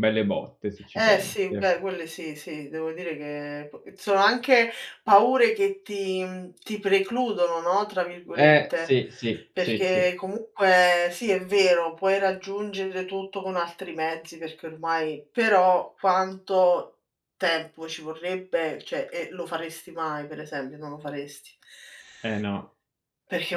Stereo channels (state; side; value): identical; both; correlation 1.00